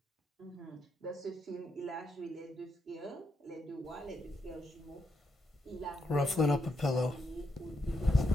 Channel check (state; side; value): normal; both; correlation 0.80